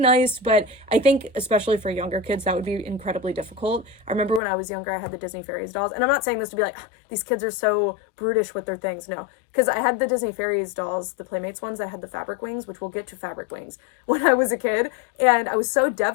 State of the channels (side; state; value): right; drops out; at 4.4 s